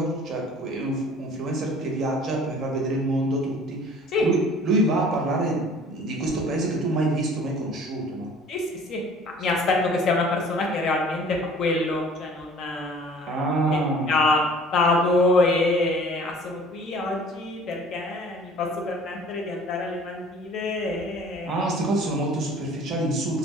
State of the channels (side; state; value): both; normal; correlation 0.49